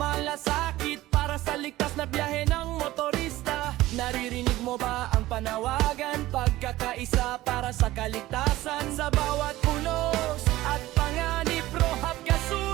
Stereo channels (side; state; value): left; quieter; 16.6 dB